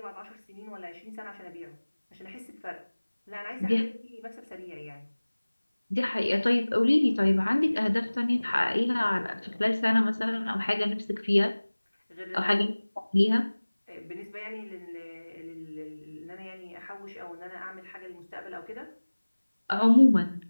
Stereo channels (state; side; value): inverted; both; correlation -1.00